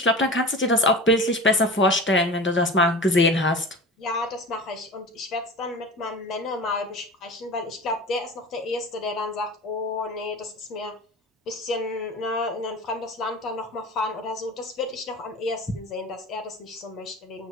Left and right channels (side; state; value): both; normal; correlation 0.34